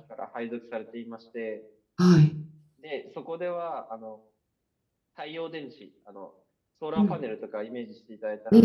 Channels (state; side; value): identical; both; correlation 1.00